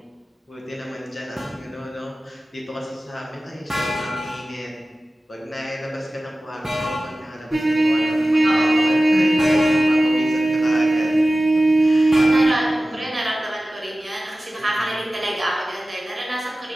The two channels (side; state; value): both; normal; correlation 0.96